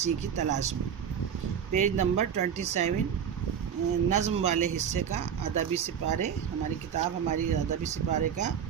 کی تلاش میں، پیج نمبر 27، نظم والے حصے کا ادبی سپارے، ہماری کتاب ہماری ادبی سپارے کا،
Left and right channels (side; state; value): left; quieter; 8.1 dB